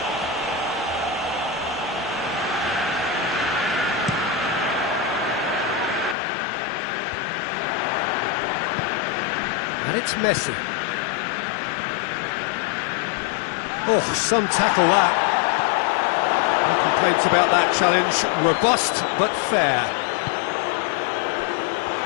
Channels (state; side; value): drops out; right; at 6.2 s